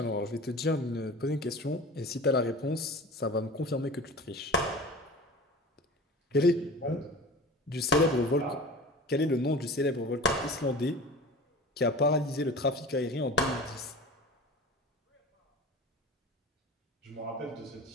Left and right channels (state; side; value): normal; both; correlation 0.36